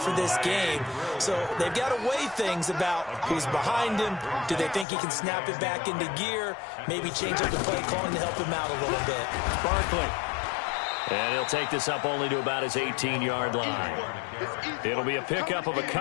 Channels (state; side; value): drops out; right; at 4.9 s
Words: this game. So they've got to weigh things about who's behind him. Do they think he can snap it back into gear? Maybe change up the play calling to help him out a little bit. Barkley. And he'll take this up only to about his 18-yard line. It'll be a pickup of a